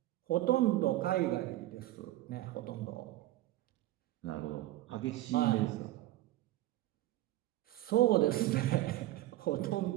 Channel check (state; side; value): quieter; left; 15.9 dB